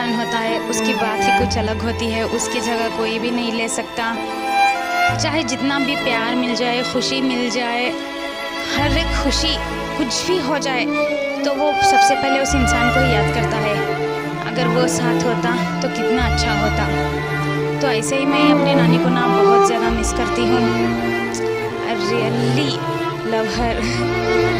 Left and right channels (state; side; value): identical; both; correlation 1.00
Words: होता है, उसकी बात ही कुछ अलग होती है, उसकी जगह कोई भी नहीं ले सकता। चाहे जितना भी प्यार मिल जाए, खुशी मिल जाए, हर एक खुशी कुछ भी हो जाए तो वो सबसे पहले उस इंसान को ही याद करता है। अगर वो साथ होता तो कितना अच्छा होता। तो ऐसे ही मैं अपने नानी को ना बहुत ज़्यादा मिस करती हूँ। आई रियली लव हर,